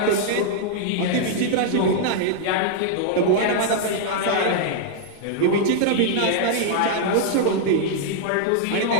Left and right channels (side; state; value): both; different; correlation -0.01